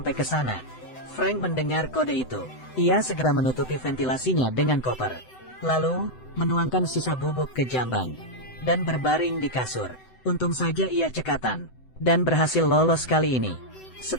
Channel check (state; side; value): late; right; 7.9 ms